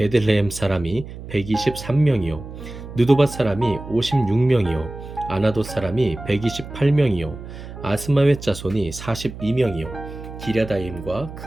사람이 123명이요 느도밧 사람이 56명이요 아나돗 사람이 128명이요 아스마웻 자손이 42명이요 기랴다임과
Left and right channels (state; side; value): noise; right; hum, 12 dB below the sound